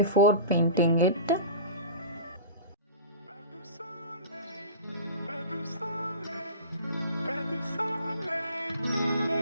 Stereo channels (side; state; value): both; inverted; correlation -0.36